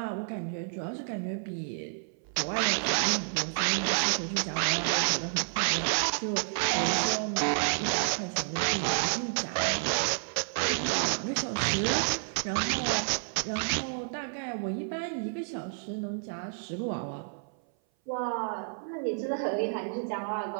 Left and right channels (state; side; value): silent; left; 58 dB below the other